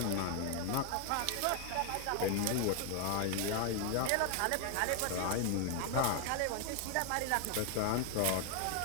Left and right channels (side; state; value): both; different; correlation 0.01